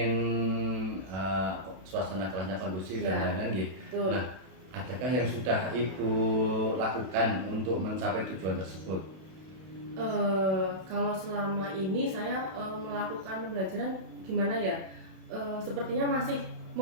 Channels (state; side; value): late; left; 32 ms